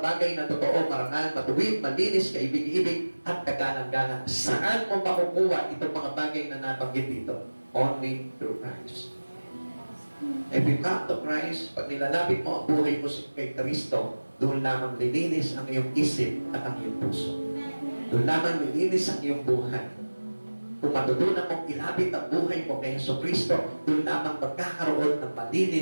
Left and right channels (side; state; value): both; inverted; correlation -1.00